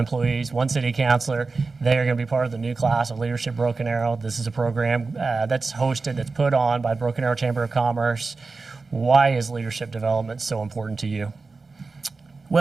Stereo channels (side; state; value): left; quieter; 4.0 dB